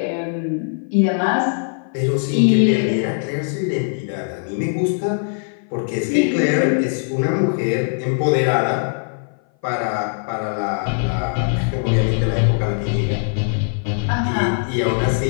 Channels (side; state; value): right; silent; 57 dB below the other